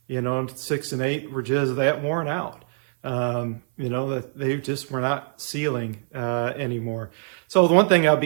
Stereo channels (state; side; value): silent; left; 58 dB below the other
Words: 6 and 8 were just that worn out. That they just were not sealing anymore. So the one thing I'll